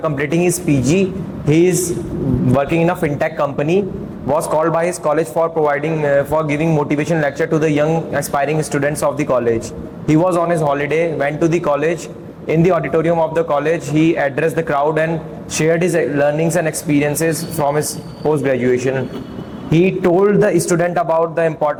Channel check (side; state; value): both; identical; correlation 1.00